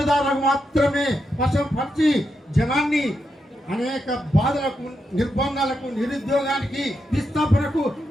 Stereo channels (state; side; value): normal; both; correlation 0.84